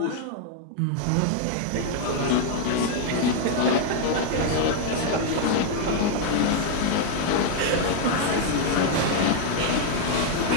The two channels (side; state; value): both; different; correlation 0.00